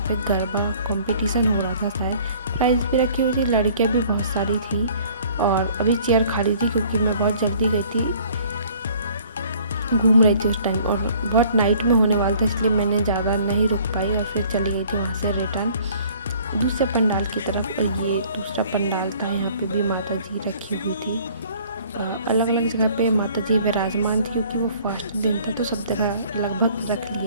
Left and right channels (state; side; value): inverted; both; correlation -0.54